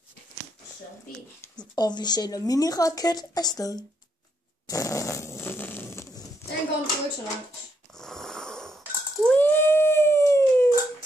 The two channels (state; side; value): normal; both; correlation 0.77